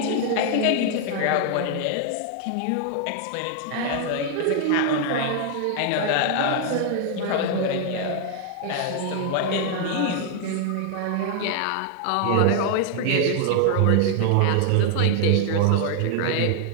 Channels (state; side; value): different; both; correlation 0.00